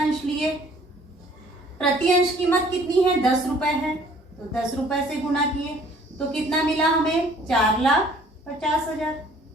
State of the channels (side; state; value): both; normal; correlation 0.56